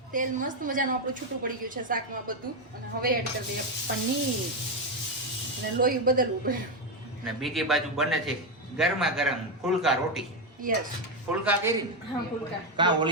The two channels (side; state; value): both; normal; correlation 0.07